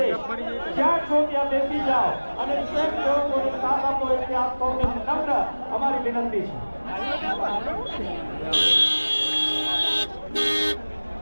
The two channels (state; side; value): inverted; both; correlation -1.00